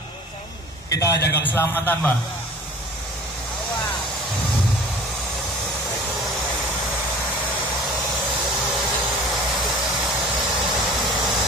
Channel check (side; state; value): both; normal; correlation 0.44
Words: Kita jaga keselamatan Pak.